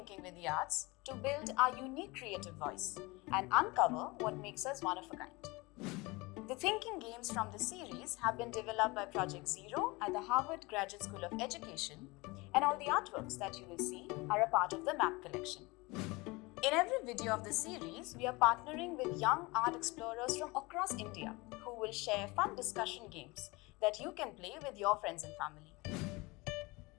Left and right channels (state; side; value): quieter; right; 24.2 dB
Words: with the arts to build our unique creative voice and uncover what makes us one of a kind. The thinking games from the series have been developed by Project Zero at the Harvard Graduate School of Education, and all the artworks that you will see are a part of the MAP collection. In every video of the series, we are partnering with young art explorers from across India who will share fun discussion games that you can play with your friends and family.